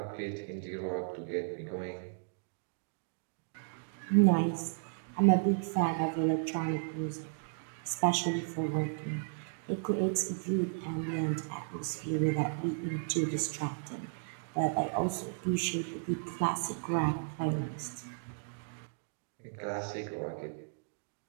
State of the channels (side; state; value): left; silent; digital silence